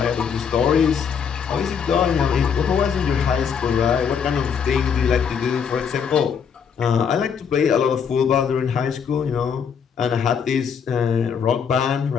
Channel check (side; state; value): right; quieter; 7.0 dB